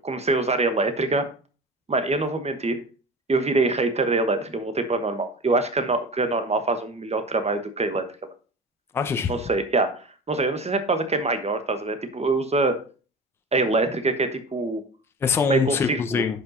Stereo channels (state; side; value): normal; both; correlation 0.34